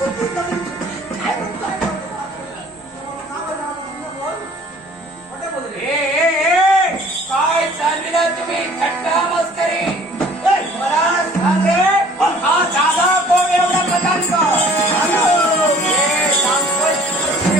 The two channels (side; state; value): both; normal; correlation 0.52